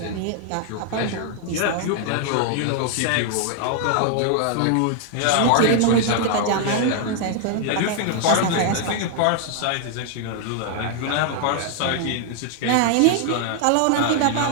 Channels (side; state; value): both; different; correlation 0.00